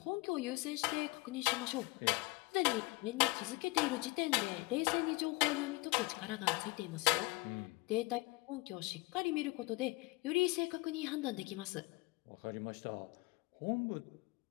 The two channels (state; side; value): quieter; right; 24.1 dB